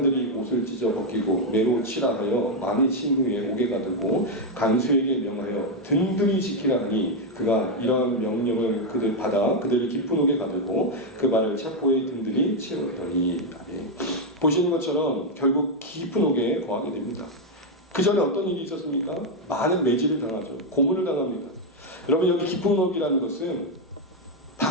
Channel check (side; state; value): both; normal; correlation 0.02